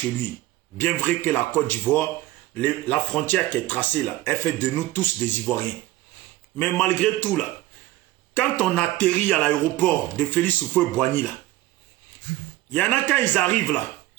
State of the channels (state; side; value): quieter; left; 16.7 dB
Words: lui. Bien vrai que la Côte d'Ivoire, la frontière qui est tracée là, elle fait de nous tous des Ivoiriens. Mais malgré tout là, quand on atterrit à l'aéroport de Félix Houphouët-Boigny là, il y en a quand ils arrivent là,